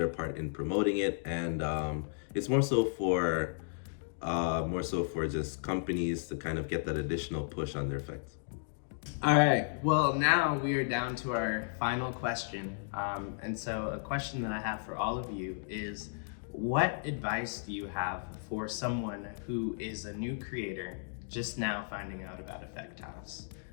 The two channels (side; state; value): right; silent; digital silence